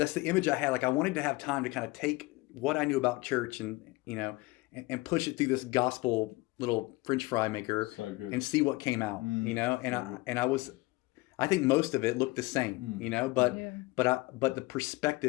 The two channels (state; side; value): quieter; right; 22.5 dB